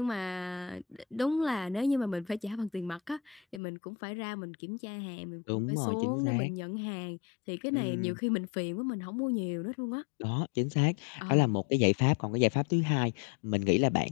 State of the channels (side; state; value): right; drops out; at 3.6 s